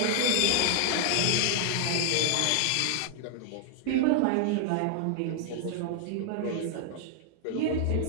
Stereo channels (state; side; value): different; both; correlation 0.00